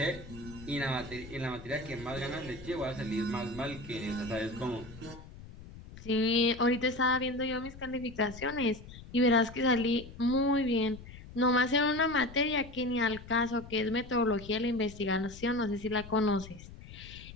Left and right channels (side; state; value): left; noise; rumble, 16 dB below the sound